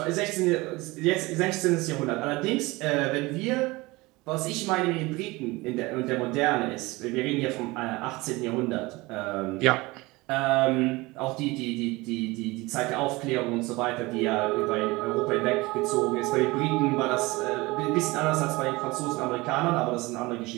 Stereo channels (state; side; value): quieter; left; 22.3 dB